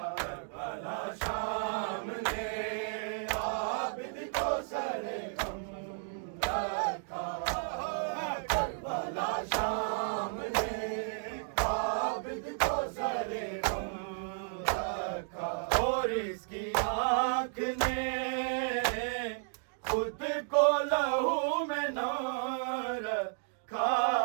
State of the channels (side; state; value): left; silent; digital silence